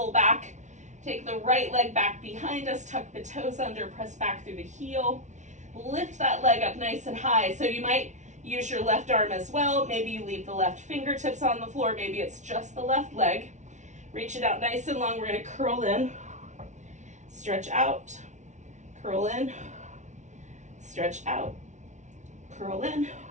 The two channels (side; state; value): left; late; 0.35 ms